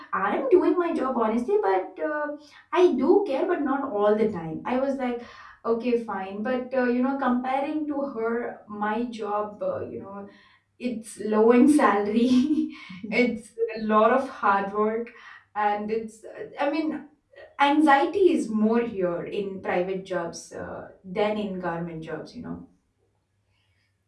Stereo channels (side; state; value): both; identical; correlation 1.00